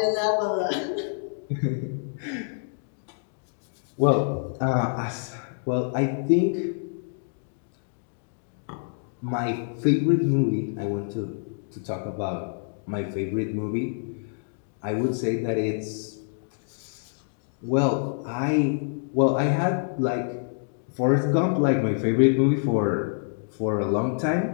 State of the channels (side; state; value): right; silent; digital silence